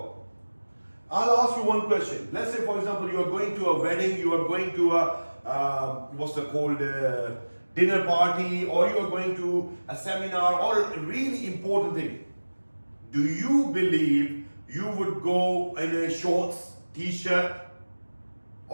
I'll ask you one question. Let's say, for example, you are going to a wedding, you are going to a dinner party, or you are going to a seminar, or a really important thing. Do you believe you would go in a shorts, t-shirt,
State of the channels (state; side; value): inverted; both; correlation -1.00